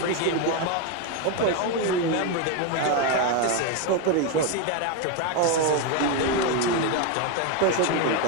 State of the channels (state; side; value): different; both; correlation 0.02